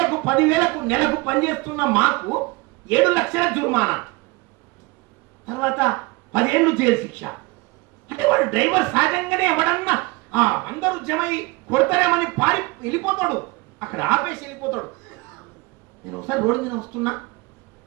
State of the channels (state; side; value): quieter; left; 24.3 dB